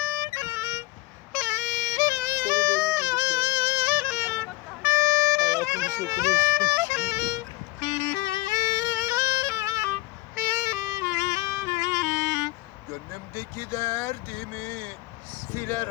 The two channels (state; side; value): quieter; right; 21.2 dB